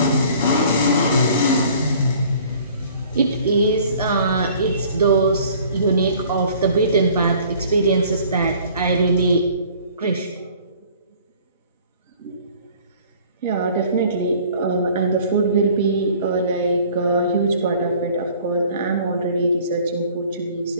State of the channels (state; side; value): inverted; both; correlation -0.52